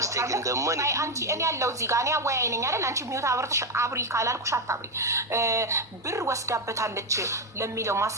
አንቺ እኔ ያለው እዚህ ጋር እኔ አወያይ ነኝ አይደል? አንቺ ሚውት አብርተሽ አብሪ ካላልኩሽ አታብሪ። ብር ወስዳበታለች ለሚለው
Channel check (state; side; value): normal; both; correlation 0.08